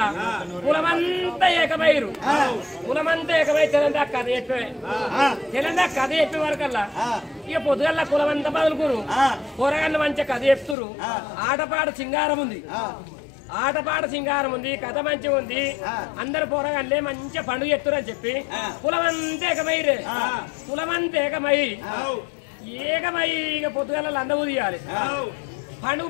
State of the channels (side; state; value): right; drops out; at 10.8 s